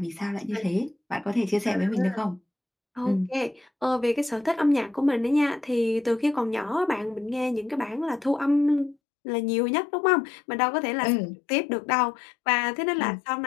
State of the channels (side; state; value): right; drops out; at 9.0 s